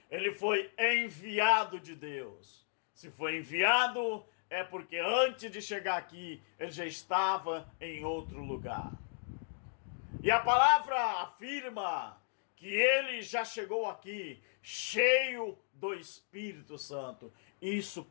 ele foi enviado de Deus. Se foi enviado, é porque antes de chegar aqui, ele já estava em outro lugar. E a palavra afirma que ele já chegou aqui cheio do Espírito Santo. Isso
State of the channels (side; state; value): right; silent; digital silence